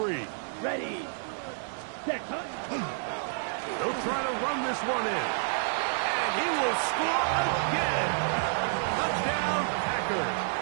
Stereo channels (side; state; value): left; silent; digital silence